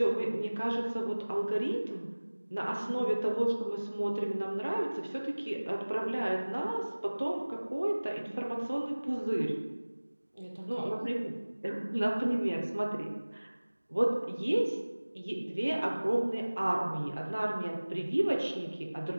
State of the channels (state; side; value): inverted; both; correlation -1.00